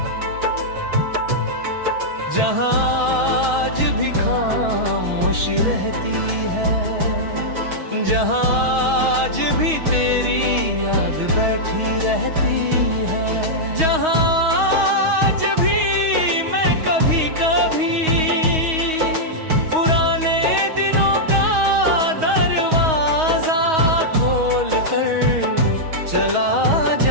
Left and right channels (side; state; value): left; late; 6.3 ms